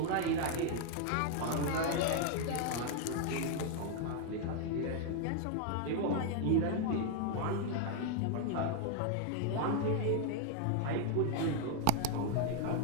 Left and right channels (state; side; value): different; both; correlation 0.00